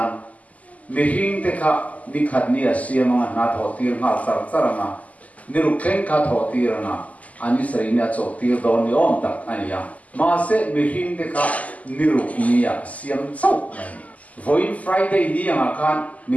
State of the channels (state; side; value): late; right; 0.073 ms